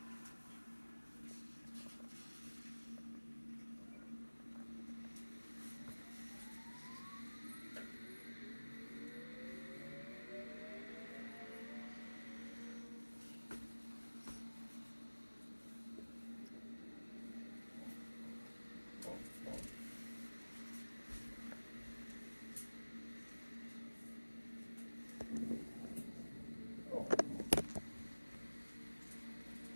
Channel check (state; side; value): inverted; both; correlation -1.00